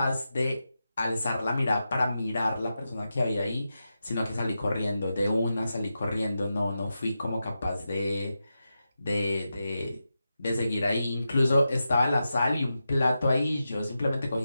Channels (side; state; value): both; inverted; correlation -0.90